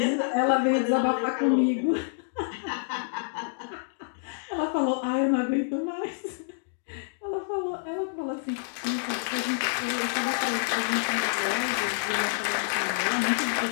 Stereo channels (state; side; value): silent; right; digital silence